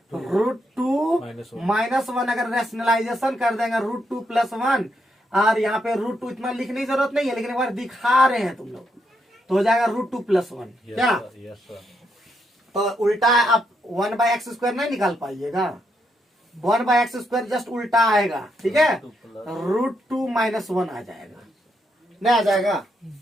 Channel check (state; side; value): normal; both; correlation 0.79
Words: -1। अगर रैशनलाइजेशन कर देंगे √2 + 1, और यहाँ पे √2 इतना लिखने की जरूरत नहीं है, लेकिन एक बार दिखा रहे हैं तुम लोग, तो हो जाएगा √2 + 1। क्या यस सर। तो उल्टा आप 1/x² नहीं निकाल पाइएगा, 1/x² जस्ट उल्टा आएगा, ठीक है, √2 - 1 आ जाएगा, नहीं आ जाएगा,